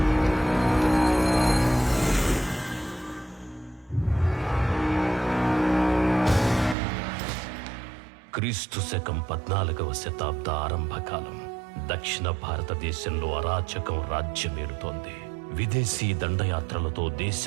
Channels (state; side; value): drops out; left; at 6.8 s